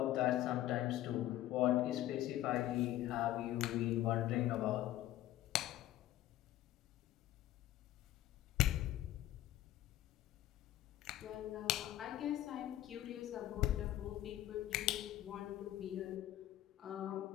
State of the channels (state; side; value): quieter; right; 14.2 dB